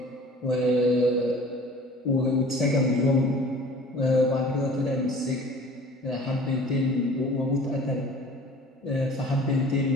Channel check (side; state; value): both; normal; correlation 0.46